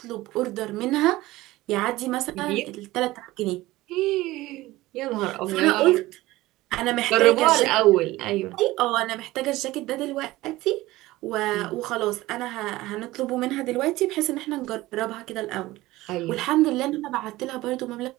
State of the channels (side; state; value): left; quieter; 18.1 dB